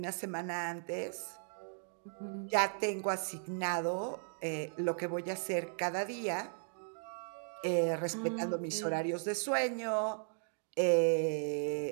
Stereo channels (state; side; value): silent; left; digital silence